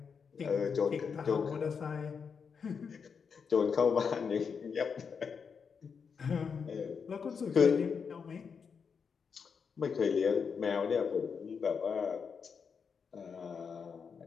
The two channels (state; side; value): quieter; right; 6.1 dB